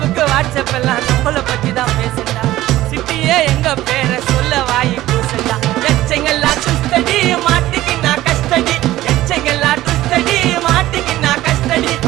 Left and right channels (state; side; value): quieter; left; 15.5 dB